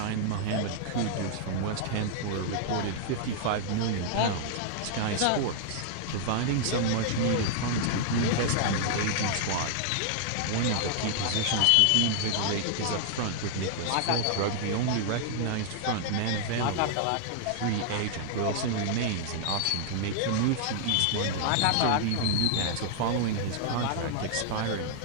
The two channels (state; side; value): different; both; correlation -0.01